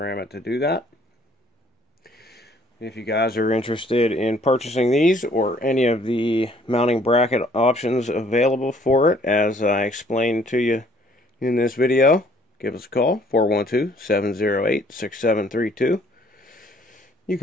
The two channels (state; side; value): normal; both; correlation 0.60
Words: it to do that. If you guys are interested in purchasing these or any of the mounting bracket options available for it, as I explained to you in this video, give us a call, 412-708-6732. You